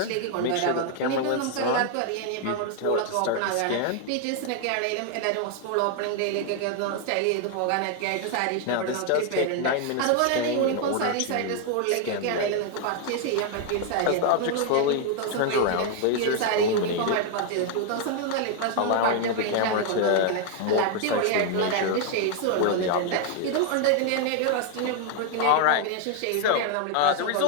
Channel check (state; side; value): different; both; correlation 0.00